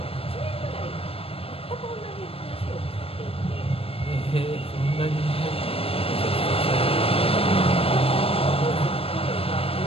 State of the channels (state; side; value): late; right; 0.28 ms